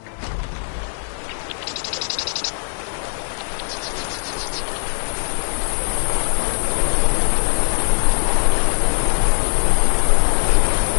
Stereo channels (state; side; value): silent; right; digital silence